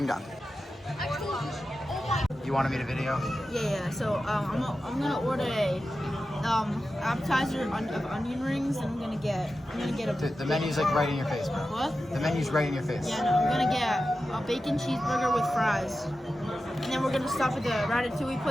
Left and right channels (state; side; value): normal; both; correlation 0.92